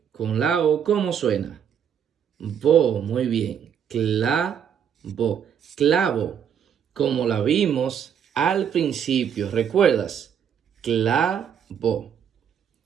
con la O, ¿cómo suena? Bo, muy bien. Clavo, clavo, como la vimos al principio, ¿recuerdas? Clavo.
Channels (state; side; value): quieter; left; 8.2 dB